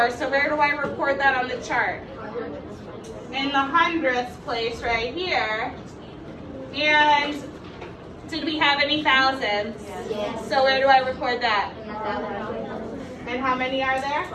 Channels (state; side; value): identical; both; correlation 1.00